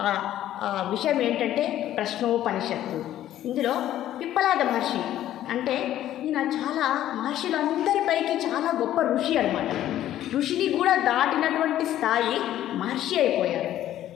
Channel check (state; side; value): quieter; right; 12.5 dB